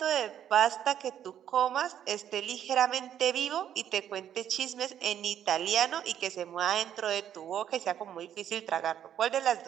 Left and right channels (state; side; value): quieter; left; 10.1 dB